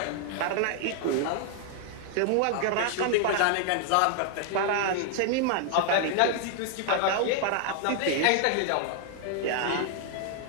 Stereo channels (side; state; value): both; different; correlation 0.00